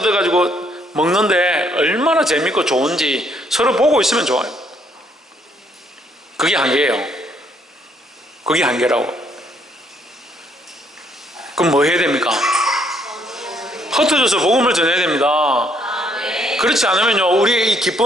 먹는데 얼마나 재밌고 좋은지 서로 보고 있으면 좋아요. 그게 한계예요. 그게 한계라고. 그럼 뭐 해야 됩니까? 흩어져서 복음을 전해야 됩니다. 그렇지 않으면요 우리의 이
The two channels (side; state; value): both; normal; correlation 0.69